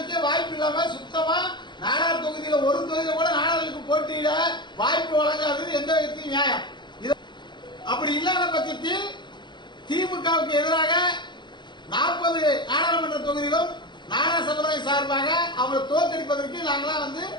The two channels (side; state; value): right; late; 0.22 ms